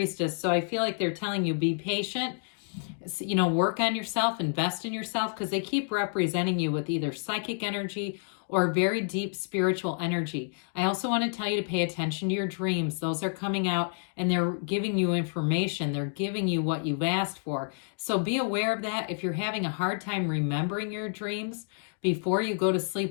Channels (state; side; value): silent; right; digital silence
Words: So I feel like they're telling you, be patient, you know, work on yourself, invest in yourself, because they keep representing you with either psychic energy or very deep spiritual energy. I also want to tell you to pay attention to your dreams. Those are coming out and they're giving you information. They're giving you what you've asked for. So be aware of that. If you're having a hard time remembering your dreams, before you go to